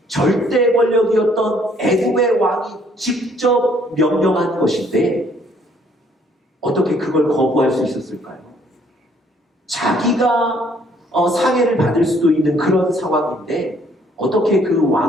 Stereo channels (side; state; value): both; normal; correlation 0.64